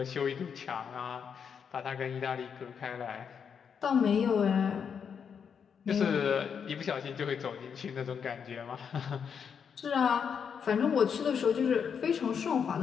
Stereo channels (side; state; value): right; quieter; 7.0 dB